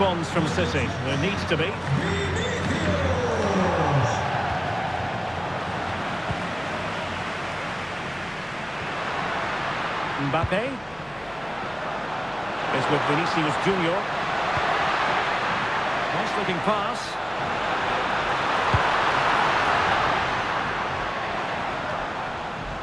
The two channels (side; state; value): left; noise; hum, 23 dB below the sound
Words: from City? There needs to be. Mbappe is with Vinicius Junior. Nice looking pass.